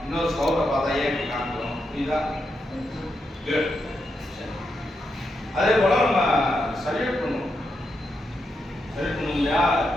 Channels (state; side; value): normal; both; correlation 0.84